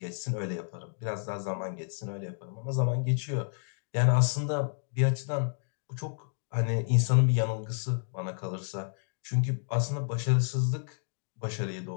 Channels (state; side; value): silent; right; digital silence